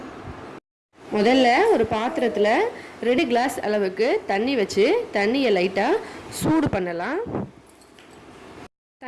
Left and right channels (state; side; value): identical; both; correlation 1.00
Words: முதல்ல ஒரு பாத்திரத்தில் 2 கிளாஸ் அளவுக்கு தண்ணி வச்சு தண்ணியை லைட்டாக சூடு பண்ணலாம்.